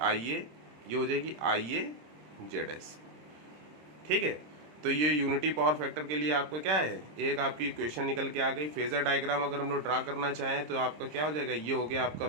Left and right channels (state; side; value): late; left; 26 ms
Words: ये हो जाएगी IAZS। ठीक है, तो ये यूनिटी पावर फैक्टर के लिए आपका क्या है, एक आपकी इक्वेशन निकल के आ गई। फेजर डायग्राम अगर हम लोग ड्रा करना चाहें तो आपका क्या हो जाएगा, ये हो गया आपका